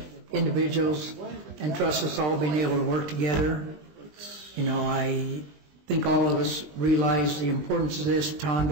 individuals and trust us all being able to work together. You know, I think all of us realize the importance of this.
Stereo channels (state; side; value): late; left; 20 ms